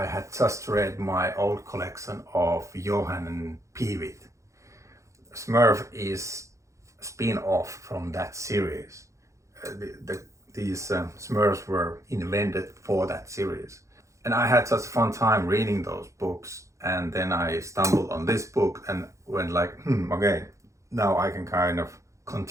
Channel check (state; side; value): late; left; 0.15 ms